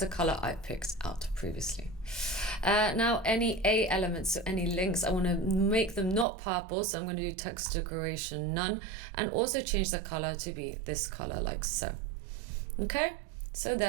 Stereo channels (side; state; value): left; drops out; at 6.2 s